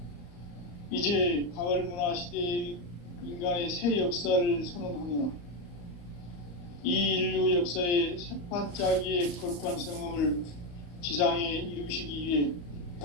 이제 가을 문화 시대의 인간의 새 역사를 선언하노라. 이 인류 역사의 새판짜기의 거룩한 성음을 지상에 이루시기 위해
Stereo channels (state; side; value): late; right; 34 ms